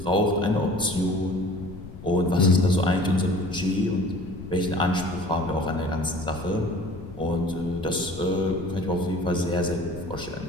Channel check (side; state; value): left; noise; rumble, 14 dB below the sound